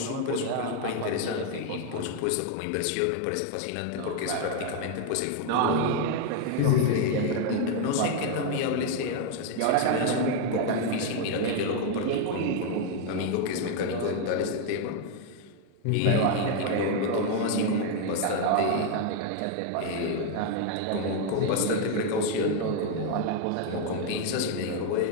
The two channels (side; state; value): both; different; correlation 0.01